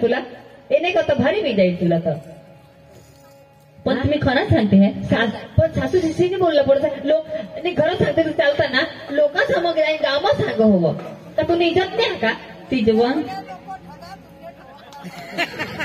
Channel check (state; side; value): identical; both; correlation 1.00